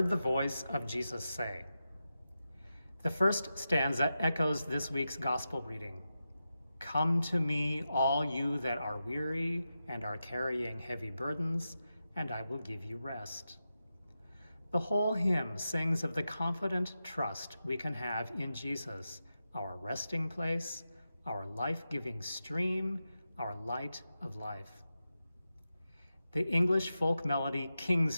the Voice of Jesus Say. The first stanza echoes this week's gospel reading. Come to me, all you that are weary and are carrying heavy burdens, and I will give you rest. The whole hymn sings of the confident trust we can have in Jesus, our resting place, our life-giving stream, our light of life. The English folk melody King's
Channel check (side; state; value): both; inverted; correlation -0.90